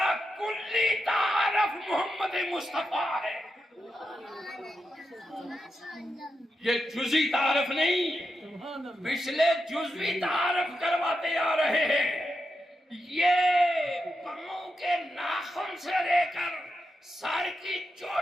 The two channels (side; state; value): both; normal; correlation 0.87